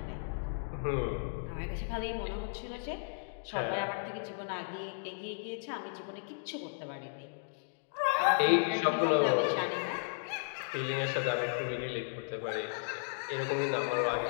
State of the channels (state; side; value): silent; right; digital silence